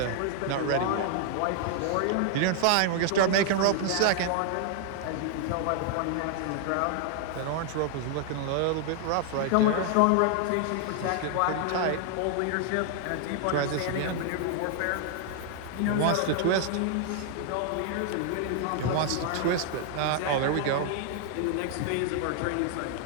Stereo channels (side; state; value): both; different; correlation 0.00